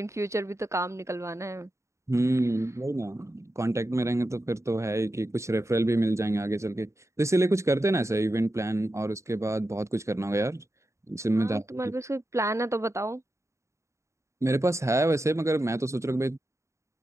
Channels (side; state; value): left; late; 0.14 ms